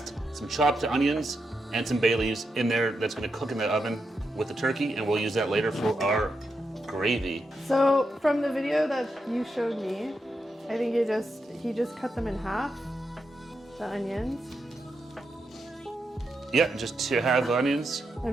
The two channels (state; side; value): normal; both; correlation 0.85